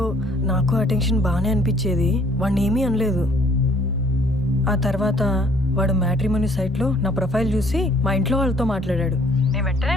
నాకు ఆ టెన్షన్ బాగానే అనిపించేది, వాడిని ఏమీ అనలేదు. ఆ తర్వాత వాడు మ్యాట్రిమోనీ సైట్లో నా ప్రొఫైల్ చూసి మా ఇంట్లో వాళ్ళతో మాట్లాడాడు. నేను వెంటనే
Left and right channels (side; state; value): both; normal; correlation 0.59